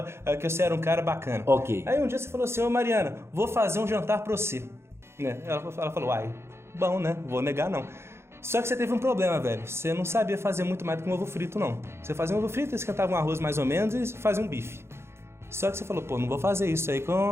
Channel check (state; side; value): late; left; 0.12 ms